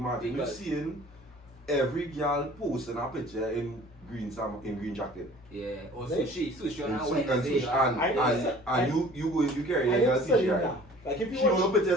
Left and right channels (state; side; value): normal; both; correlation 0.48